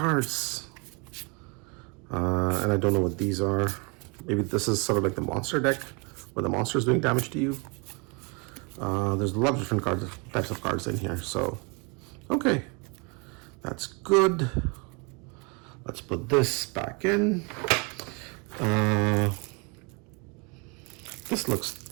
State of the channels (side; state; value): left; quieter; 31.7 dB